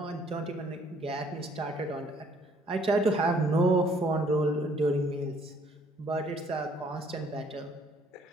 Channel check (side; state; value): both; normal; correlation 0.62